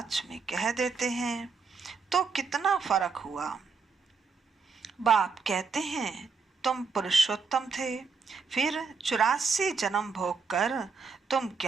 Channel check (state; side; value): quieter; left; 5.0 dB